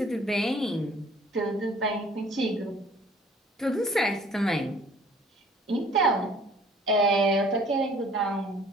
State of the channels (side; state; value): both; normal; correlation 0.54